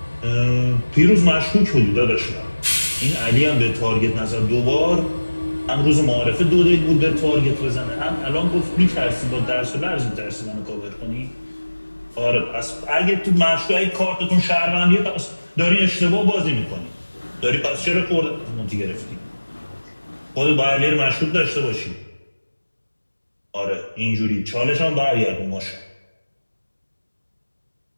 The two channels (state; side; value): inverted; both; correlation -1.00